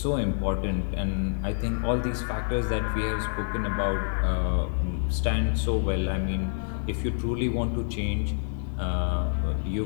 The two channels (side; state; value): right; silent; digital silence